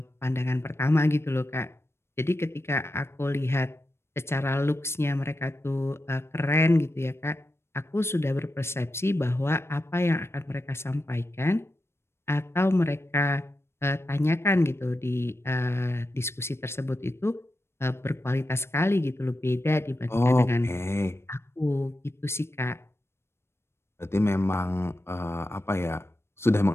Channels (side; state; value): right; late; 0.12 ms